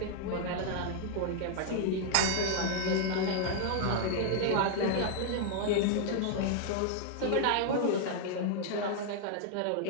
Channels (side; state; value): both; different; correlation 0.00